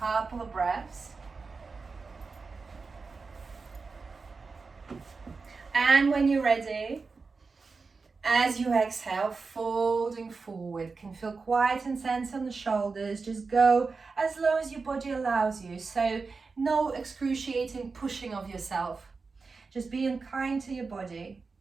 of breaths. And when you're ready, as you exhale, folding forward, can feel quite intense on the shoulders. Just go as low as your body allows you. So no excruciating pushing of yourself. Just being kind to your body.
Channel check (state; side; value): quieter; left; 4.4 dB